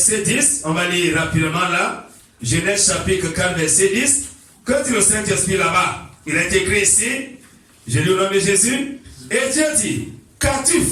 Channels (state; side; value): identical; both; correlation 1.00